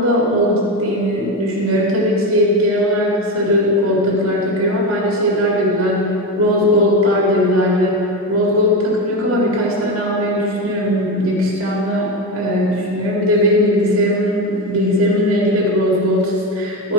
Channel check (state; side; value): normal; both; correlation 0.18